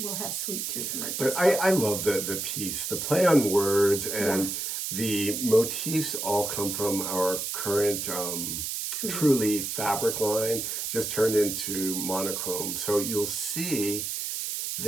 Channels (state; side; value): noise; right; hiss, 3 dB below the sound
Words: we'll have Sweet Tooth merch. But I love the piece, the play on words, and the motifs all come from our current Truly fabric line, just turned into monochrome. So you'll see